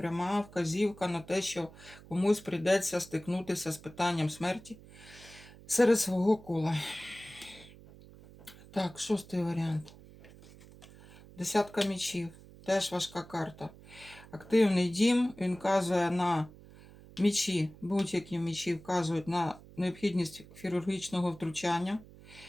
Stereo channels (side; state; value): right; noise; hum, 20 dB below the sound